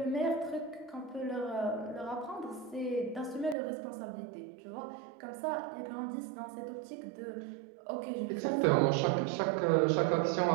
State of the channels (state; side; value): drops out; left; at 3.6 s